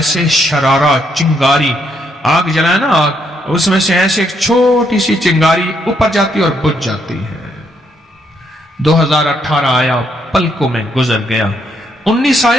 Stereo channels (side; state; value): both; normal; correlation 0.74